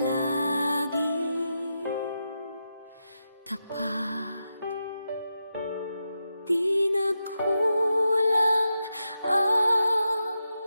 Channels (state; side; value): inverted; both; correlation -0.88